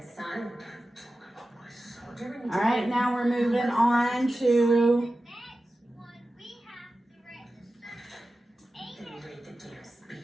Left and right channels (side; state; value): both; normal; correlation 0.94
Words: All right, now we're moving on to